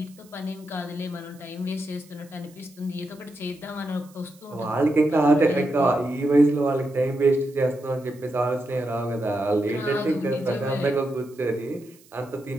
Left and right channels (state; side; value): noise; right; hiss, 27 dB below the sound